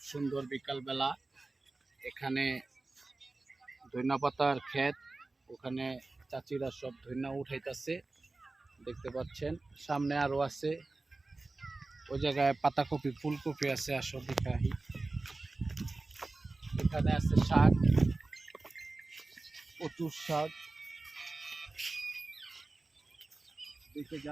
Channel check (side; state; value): left; quieter; 3.3 dB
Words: সুন্দর বিকালবেলা। এখানে ধইনা পাতার ক্ষেত, ওখানে চাচিরা সব ধইনা উঠাইতেছে, দেখতে পাচ্ছেন। সামনে আরো আছে, ওই জায়গায় পাতাকপি ফুলকপি আছে, আসো দেখাই। এখানে আছে শাক, প্রচুর শাক, দেখে